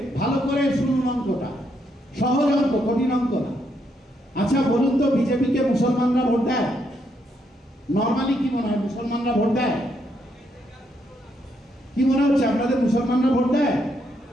ভালো করে শুনুন অঙ্কটা, সহজ অঙ্ক, কঠিন অঙ্ক না। আচ্ছা বলুন তো, বিজেপিকে মুসলমানরা ভোট দেয়? নর্মালি কি মনে হয়, মুসলমানরা ভোট দেয়? কি মনে হচ্ছে আপনাদের, মুসলমানরা ভোট দেয়?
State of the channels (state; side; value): normal; both; correlation 0.76